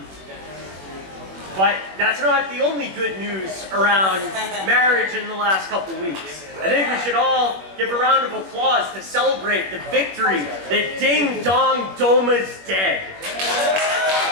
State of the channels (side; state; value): left; late; 21 ms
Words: But that's not the only good news around marriage in the last couple weeks. I think we should all give a round of applause to celebrate the victory that Ding Dong Doma's dead.